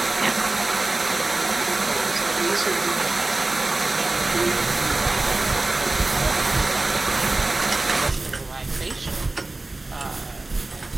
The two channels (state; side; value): quieter; left; 3.1 dB